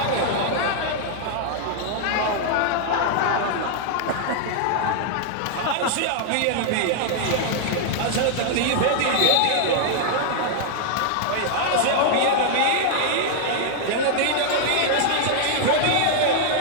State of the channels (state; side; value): different; both; correlation 0.00